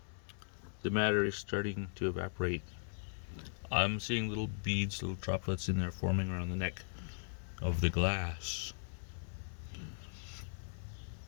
the matter is starting to evaporate. I'm seeing little beads, little droplets in there forming around the neck of the glass.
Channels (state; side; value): silent; right; digital silence